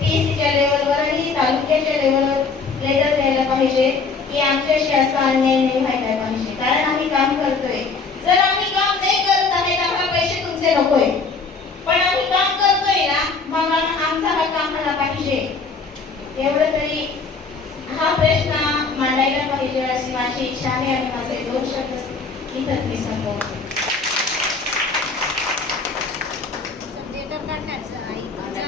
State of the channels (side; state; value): right; quieter; 4.5 dB